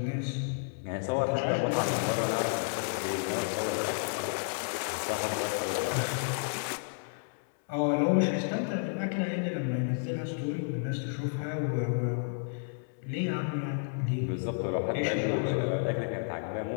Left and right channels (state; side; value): silent; right; digital silence